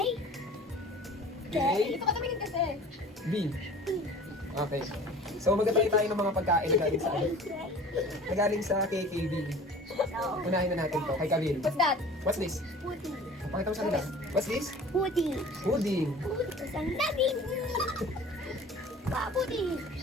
K? Dito ka tumingin kasi. B. Okay. So magtatry tayo ng mga pagkain na galing sa ano? Na galing sa KKB. Unahin na natin to. Kay Kabil. What's that? What's this? pudding, Pakita mo sa nila. What's this? pudding, Pudding. isang naging. Pudding,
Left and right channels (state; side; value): normal; both; correlation 0.44